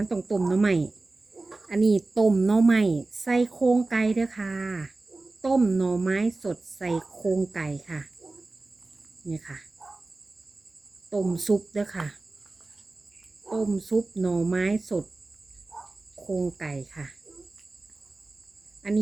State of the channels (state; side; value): quieter; left; 3.3 dB